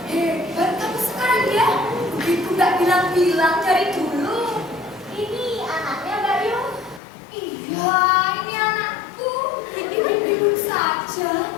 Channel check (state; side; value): drops out; right; at 7.0 s